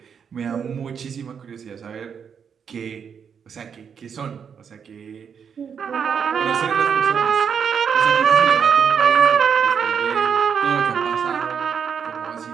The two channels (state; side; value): quieter; left; 7.1 dB